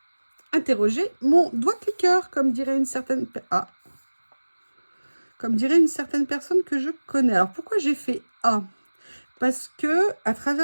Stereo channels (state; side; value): inverted; both; correlation -1.00